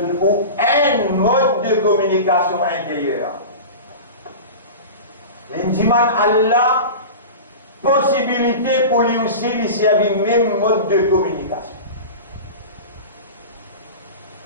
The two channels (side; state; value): both; inverted; correlation -0.30